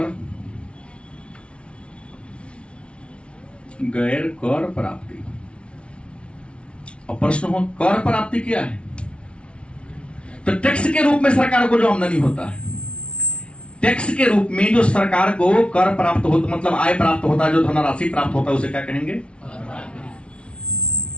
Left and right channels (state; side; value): late; right; 0.059 ms